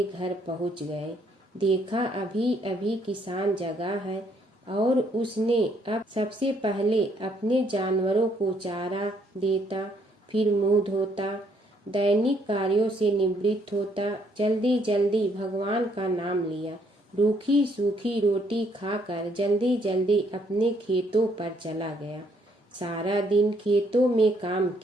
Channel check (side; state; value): both; normal; correlation 0.69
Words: घर पहुंच गए। देखा अभी अभी किसान जगा है और उसने अब सबसे पहले अपने जानवरों को चारा देता, फिर मुंह धोता, दैनिक कार्यों से निवृत्त होता, जल्दी जल्दी भगवान का नाम लिया, रूखी सूखी रोटी खाकर जल्दी जल्दी अपने खेतों पर चला गया। सारा दिन खेतों में काम